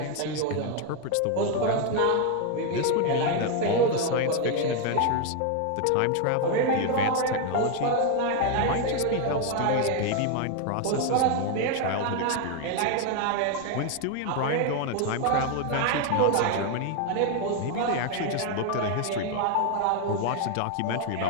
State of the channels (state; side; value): different; both; correlation 0.01